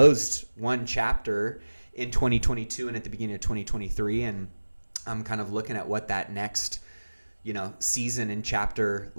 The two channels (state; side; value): inverted; both; correlation -1.00